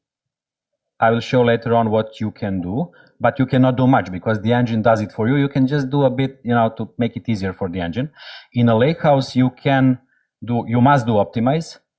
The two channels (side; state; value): both; identical; correlation 1.00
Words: I will show later on what you can do, but you cannot do much because the engine does it for you. You can just do a bit, to make it easier for the engine. In a lakehouse, you must do optimize,